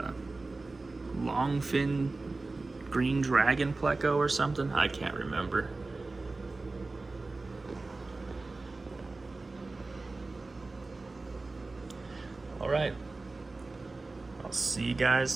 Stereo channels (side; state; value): left; quieter; 3.4 dB